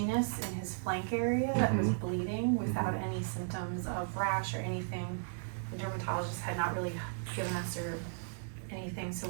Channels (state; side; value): silent; left; digital silence